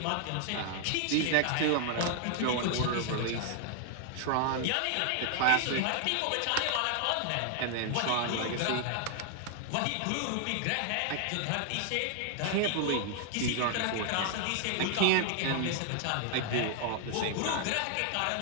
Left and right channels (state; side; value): different; both; correlation 0.00